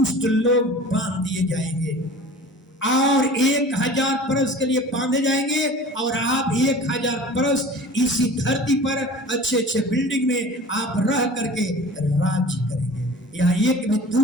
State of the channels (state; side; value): normal; both; correlation 0.41